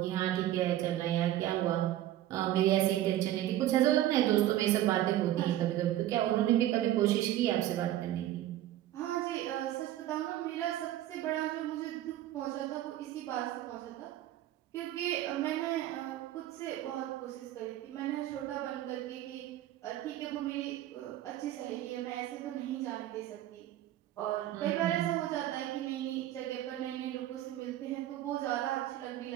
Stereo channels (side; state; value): left; quieter; 13.4 dB